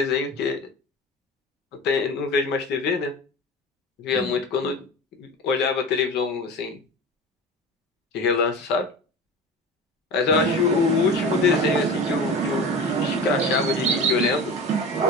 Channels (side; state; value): both; normal; correlation 0.32